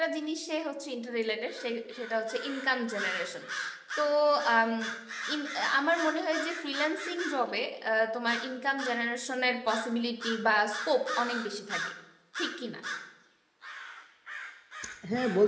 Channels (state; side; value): identical; both; correlation 1.00